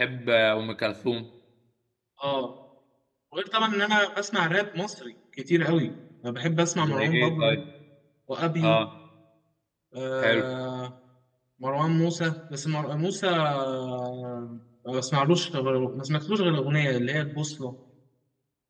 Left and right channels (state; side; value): identical; both; correlation 1.00